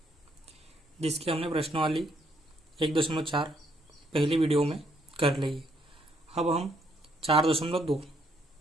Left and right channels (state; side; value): normal; both; correlation 0.71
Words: जिसकी हमने प्रश्नावली 1.4 पहली वीडियो में कर ली है। अब हम 4.2